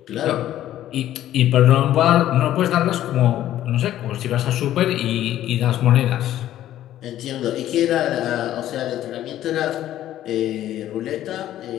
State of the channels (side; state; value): right; quieter; 12.7 dB